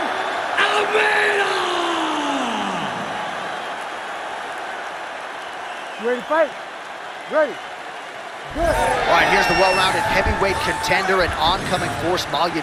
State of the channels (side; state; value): both; identical; correlation 1.00